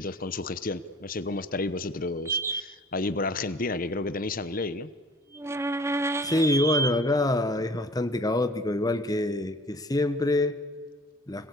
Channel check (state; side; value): normal; both; correlation 0.49